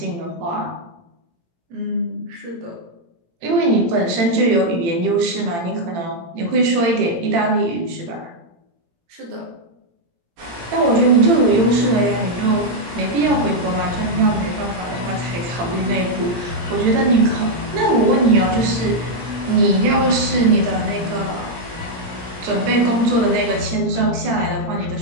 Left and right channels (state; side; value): late; left; 18 ms